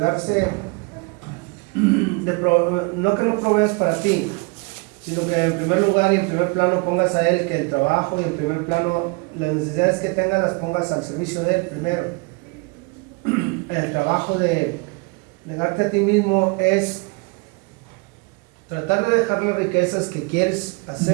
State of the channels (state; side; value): quieter; left; 29.7 dB